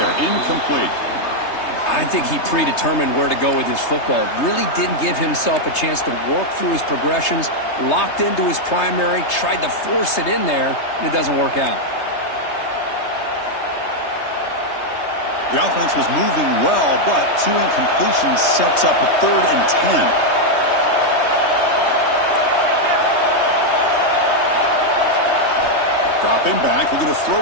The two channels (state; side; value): late; right; 3.3 ms